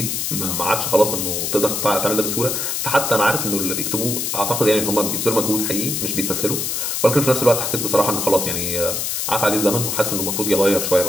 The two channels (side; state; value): left; noise; hiss, 1 dB below the sound